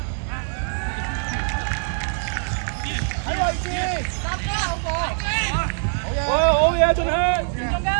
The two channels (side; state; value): left; silent; digital silence